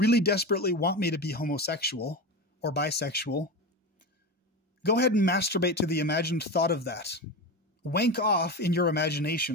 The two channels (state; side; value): normal; both; correlation 0.22